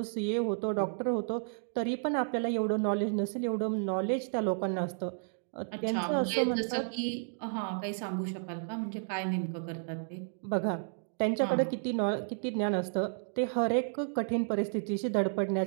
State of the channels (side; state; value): left; silent; digital silence